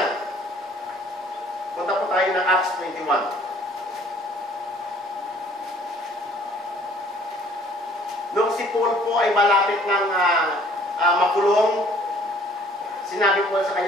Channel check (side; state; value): both; normal; correlation 0.56